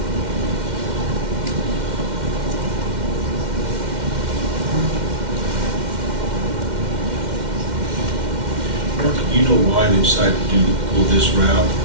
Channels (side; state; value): left; late; 2.1 ms